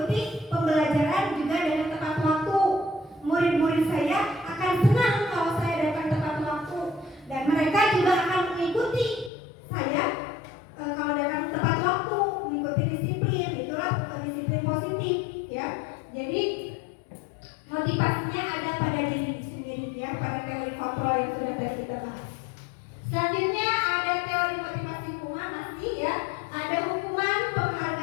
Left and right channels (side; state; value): right; drops out; at 9.3 s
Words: pembelajaran juga dengan tepat waktu. Murid-murid saya akan senang kalau saya datang tepat waktu, dan mereka juga akan mengikuti saya kalau datang tepat waktu, mengikuti disiplin. Itulah disiplin positif, ya. Jadi motivasinya ada pada diri sendiri, ya, pada teori kontrol yang sudah tadi kita bahas. Selanjutnya ada teori motivasi hukuman, masih, ya. Ada hukuman,